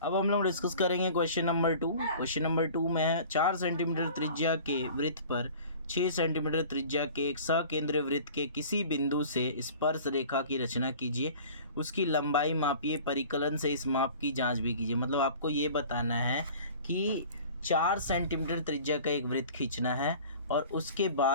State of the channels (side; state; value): both; inverted; correlation -0.44